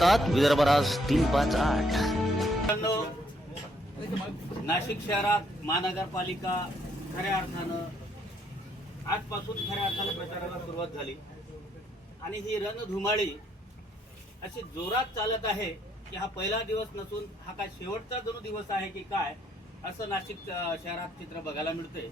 विदर्भराज 358। मित्रांनो, नाशिक शहरात महानगरपालिका खऱ्या अर्थानं आजपासून खऱ्या अर्थानं प्रचाराला सुरुवात झाली आणि ही रणधुमाळी अशी जोरात चालत आहे की हा पहिला दिवस नसून हा काय शेवटचा जणू दिवस आहे की काय, असं नाशिक शहरात चित्र बघायला मिळते।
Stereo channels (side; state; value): both; normal; correlation 0.70